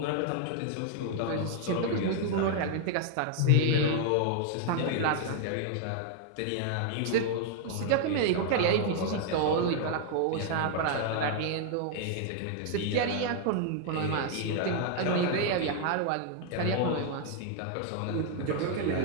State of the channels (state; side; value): different; both; correlation 0.00